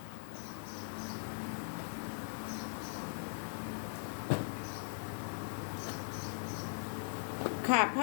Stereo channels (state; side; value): silent; right; digital silence